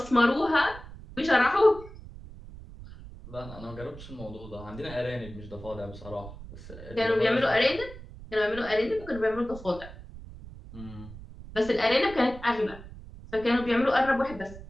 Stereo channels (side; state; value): right; noise; rumble, 15 dB below the sound